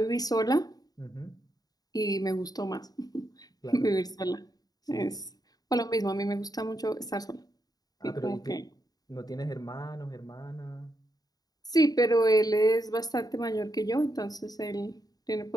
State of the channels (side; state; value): right; late; 0.18 ms